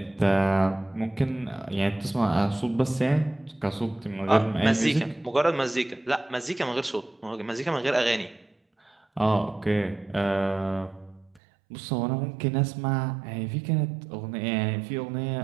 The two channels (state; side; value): drops out; left; at 11.4 s